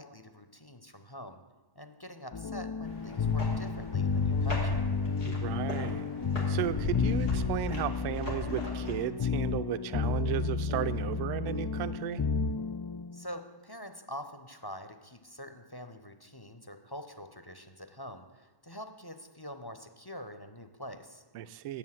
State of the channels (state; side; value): late; right; 1.1 ms